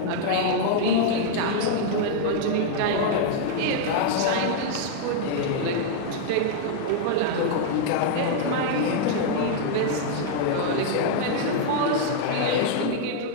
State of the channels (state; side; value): different; both; correlation 0.00